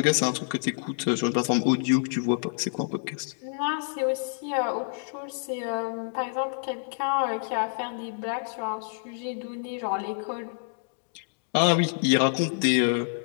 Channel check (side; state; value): right; silent; digital silence